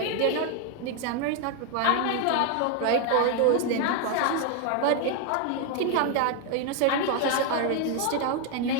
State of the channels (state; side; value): different; both; correlation 0.01